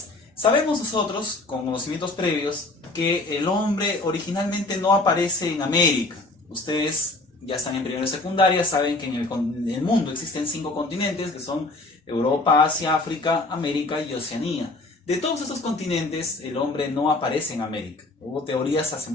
Sabemos nosotros, con conocimientos previos, que el hombre originalmente no aparece en América. Ustedes ya están en primero y secundaria, saben que en el mundo existen 5 continentes, que son Europa, Asia, África, América y Oceanía. De todos estos continentes, el hombre no aparece en América. Hubo teorías hace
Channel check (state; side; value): quieter; right; 3.0 dB